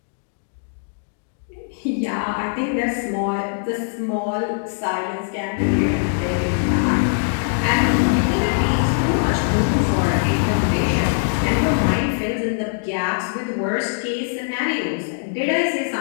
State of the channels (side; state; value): right; silent; digital silence